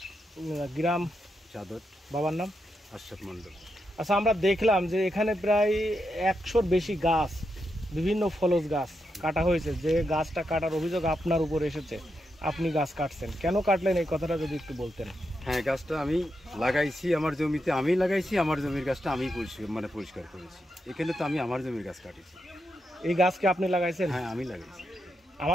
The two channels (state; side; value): normal; both; correlation 0.84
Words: গ্রাম চাদর। বাবার নাম আশরাফ মন্ডল। আচ্ছা, আমরা দেখলাম যে এখানে প্রায় 100-র বেশি গাছ, বিভিন্ন ফলজ গাছ কাটা হয়েছে। যে গাছটা কাটার অভিযোগ আপনার উপর এসেছে, আপনি গাছ কাটছেন, কেন কাটলেন এই কথাটা যদি একটু বলতেন। হ্যাঁ, গাছটা আমি লাগাইছি আমার জমিতে, আমি লাগাইছি। আমার জমির গাছটা আমি পরিষ্কার করেছি। এখানে তো আমি আমার জমির গাছ কাটিছি। এই গাছকে আপনি লাগাইছেন? হ্যাঁ, আমি লাগাইছি।